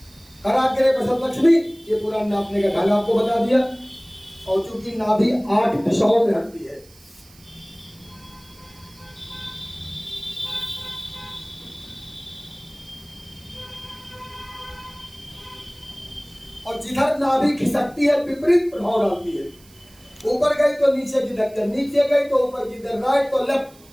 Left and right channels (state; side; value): noise; right; hiss, 26 dB below the sound